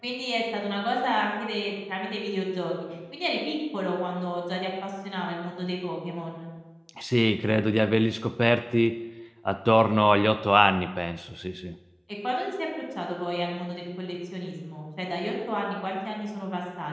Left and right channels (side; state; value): both; identical; correlation 1.00